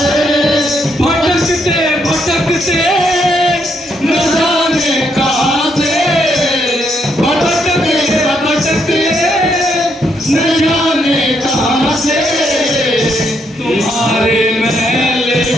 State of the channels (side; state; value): both; normal; correlation 0.76